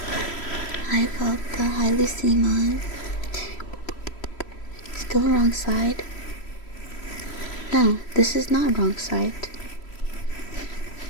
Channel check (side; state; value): right; late; 3.1 ms